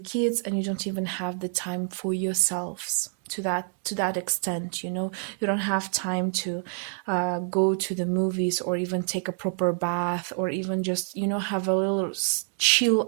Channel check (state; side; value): silent; left; 60 dB below the other